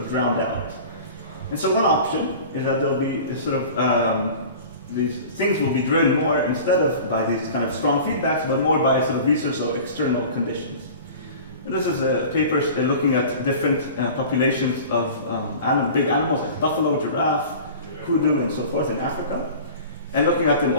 drowned out. And so one option is that there'll be this sort of, these things will be driven more instead of by these kind of strong feedbacks, but more by sort of research of external conditions. And this is a paper looking at different populations of big animals like buffalo, giraffe, kudu, and so forth in Africa, and looking at them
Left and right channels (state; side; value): inverted; both; correlation -0.40